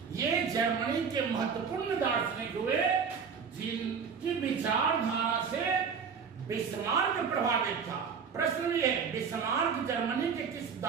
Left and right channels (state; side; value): quieter; left; 6.2 dB